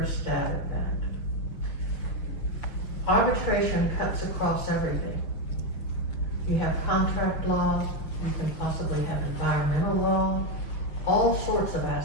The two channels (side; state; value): right; late; 6.2 ms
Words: stab at that. Arbitration cuts across everything. You have contract law, you can possibly have environmental law, all sorts of